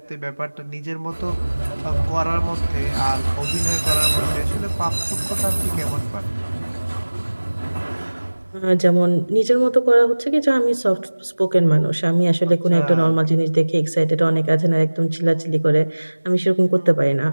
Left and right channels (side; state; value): both; inverted; correlation -1.00